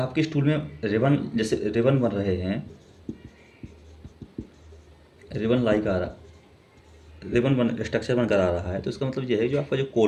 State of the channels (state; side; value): identical; both; correlation 1.00